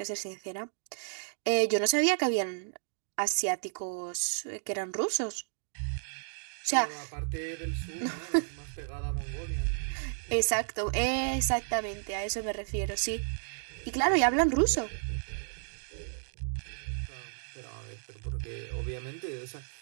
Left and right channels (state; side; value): silent; left; digital silence